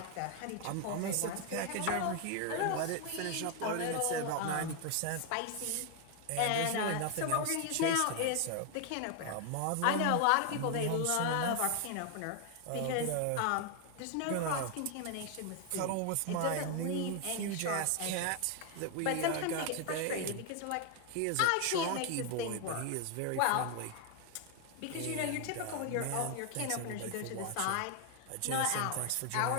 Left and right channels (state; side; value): different; both; correlation 0.00